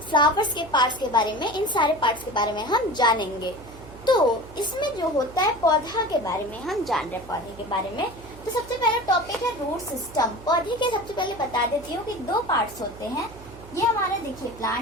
फ्लावर्स के पार्ट्स के बारे में, इन सारे पार्ट्स के बारे में हम जानेंगे। तो इसमें जो होता है पौधा के बारे में हम जान रहे हैं, पौधे के बारे में। तो सबसे पहला टॉपिक है रूट सिस्टम। पौधे के सबसे पहले बता देती हूँ कि दो पार्ट्स होते हैं। ये हमारा देखिए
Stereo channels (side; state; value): right; noise; hum, 18 dB below the sound